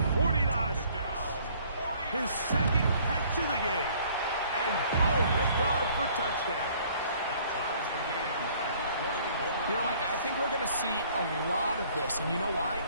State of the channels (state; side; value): inverted; both; correlation -0.58